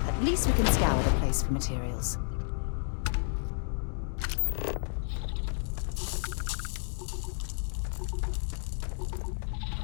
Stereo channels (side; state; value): right; silent; digital silence